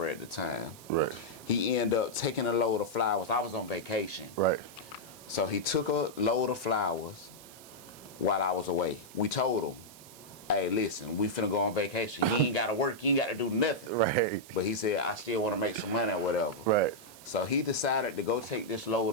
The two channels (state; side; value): noise; right; hiss, 19 dB below the sound